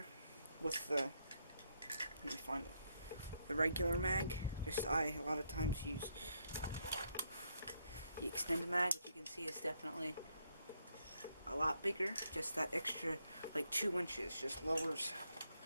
With the, let me find it, the regular mag. I a lot of times use the extended mag, which you can see is definitely a lot bigger. Just that extra, like 2 inches, just lowers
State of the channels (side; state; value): both; inverted; correlation -0.76